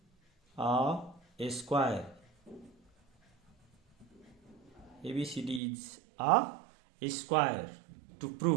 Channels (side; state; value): left; drops out; at 5.6 s